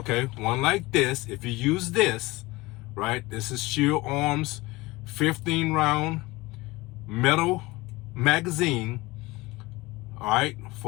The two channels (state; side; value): quieter; right; 21.3 dB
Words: one like this. If you use this, right, this is firearms 15 round metal magazine, all right,